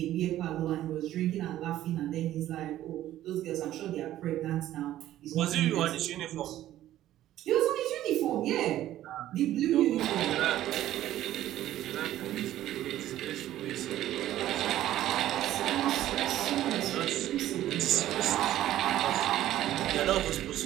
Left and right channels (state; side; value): quieter; left; 13.4 dB